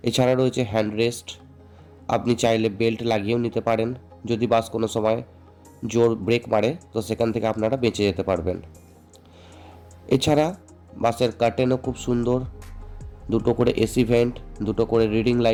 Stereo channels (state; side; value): identical; both; correlation 1.00